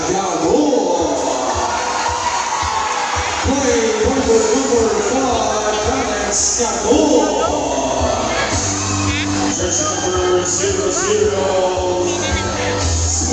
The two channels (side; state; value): both; identical; correlation 1.00